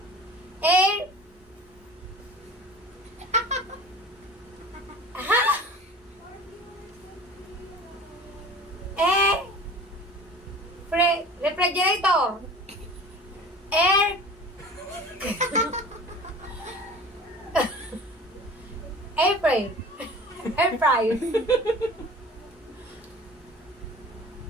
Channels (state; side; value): normal; both; correlation 0.41